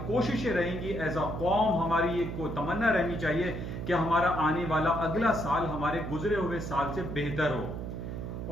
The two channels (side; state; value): right; noise; hum, 6 dB below the sound